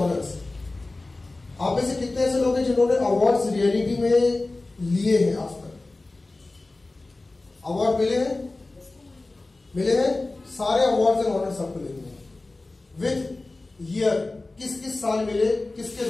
आप में से कितने ऐसे लोग हैं जिन्होंने अवार्ड्स रियलिटी में लिए हैं आज तक? अवार्ड मिले हैं? मिले हैं? सारे अवार्ड्स एंड ऑनर्स आपको लिखने हैं विथ ईयर, किस किस साल मिले, किसके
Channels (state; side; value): quieter; right; 3.1 dB